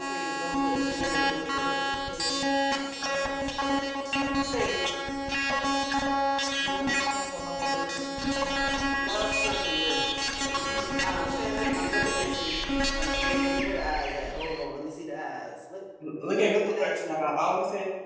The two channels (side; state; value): both; identical; correlation 1.00